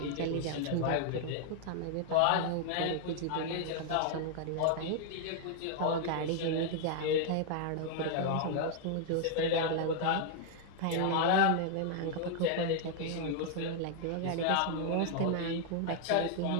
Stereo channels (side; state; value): both; different; correlation 0.00